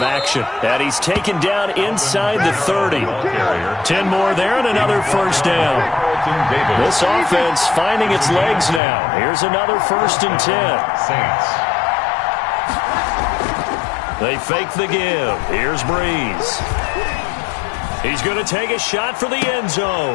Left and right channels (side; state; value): right; drops out; at 8.8 s